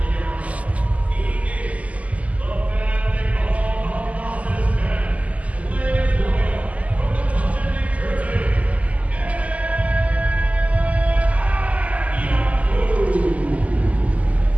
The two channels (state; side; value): late; left; 0.071 ms